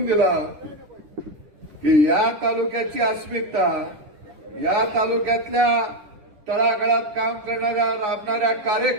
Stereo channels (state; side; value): late; left; 10 ms